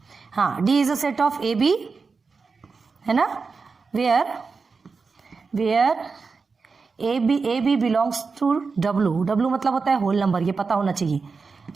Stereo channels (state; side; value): quieter; left; 4.7 dB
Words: हाँ, D is a set of A B, है ना, where A B belongs to W मतलब होता है होल नंबर, ये पता होना चाहिए।